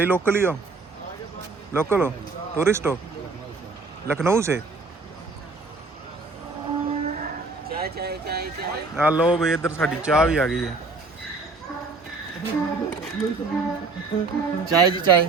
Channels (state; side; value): quieter; left; 3.8 dB